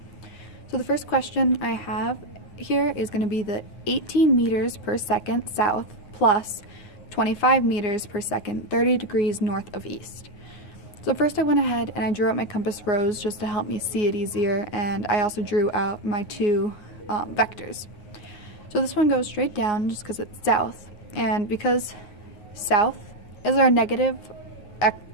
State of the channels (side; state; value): right; late; 9.3 ms